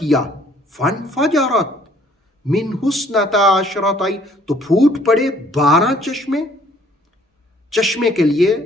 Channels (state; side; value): normal; both; correlation 0.60